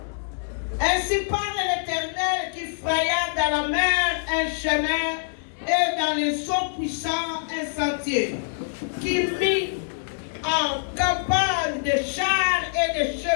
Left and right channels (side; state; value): right; silent; digital silence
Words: Ainsi parle l'Éternel qui fraya dans la mer un chemin et dans les eaux puissantes un sentier, qui mit en campagne des chars et des